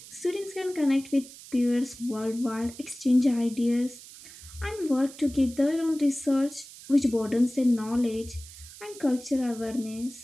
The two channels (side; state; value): right; noise; hiss, 17 dB below the sound